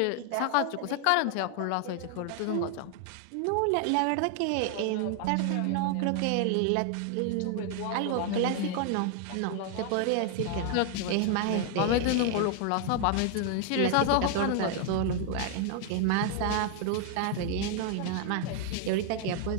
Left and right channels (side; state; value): both; different; correlation 0.00